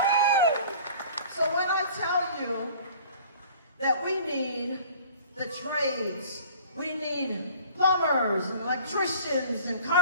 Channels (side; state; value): both; inverted; correlation -0.48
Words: So when I tell you that we need the trades, we need plumbers and electricians and